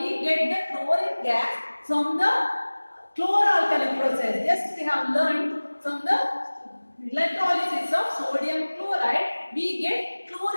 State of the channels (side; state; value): both; inverted; correlation -1.00